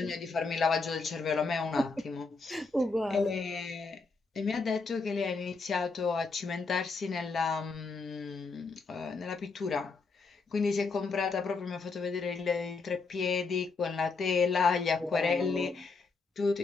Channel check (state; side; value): quieter; right; 4.2 dB